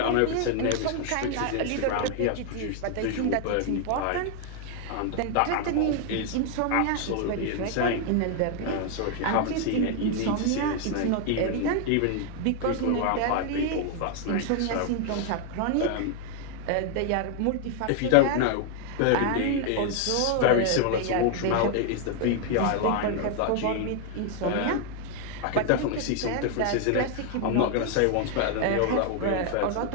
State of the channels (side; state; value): both; different; correlation 0.00